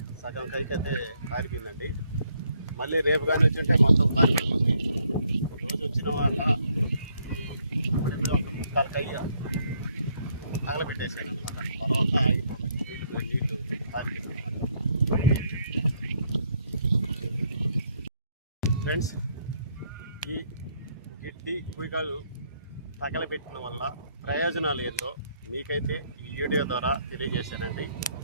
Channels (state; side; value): inverted; both; correlation -0.71